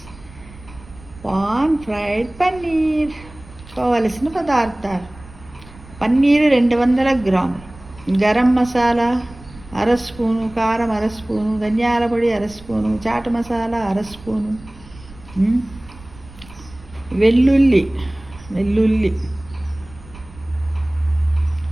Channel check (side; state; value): right; noise; rumble, 20 dB below the sound